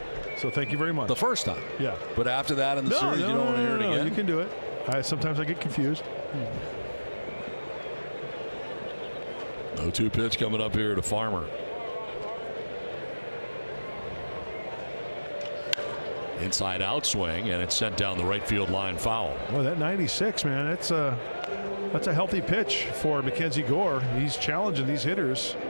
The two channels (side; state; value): both; inverted; correlation -1.00